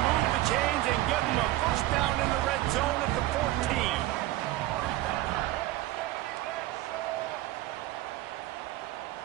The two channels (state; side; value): quieter; left; 16.1 dB